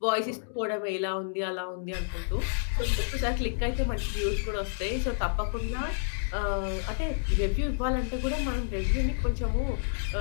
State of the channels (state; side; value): silent; right; digital silence